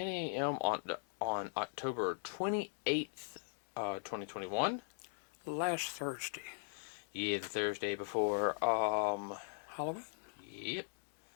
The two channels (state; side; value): silent; right; digital silence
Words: a.m. on October 28th, 2021. Last Thursday. Yeah, the Thursday before. Halloween? Yep.